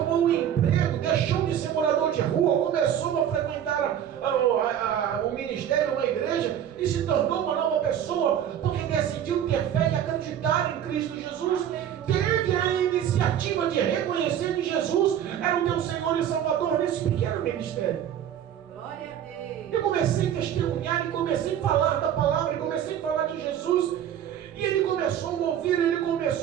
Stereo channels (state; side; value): quieter; left; 10.0 dB